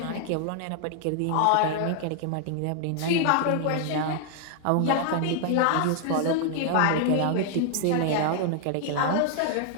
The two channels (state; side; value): different; both; correlation 0.00